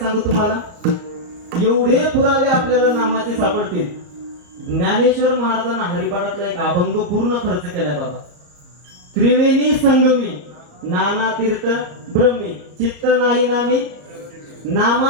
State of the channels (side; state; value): left; late; 34 ms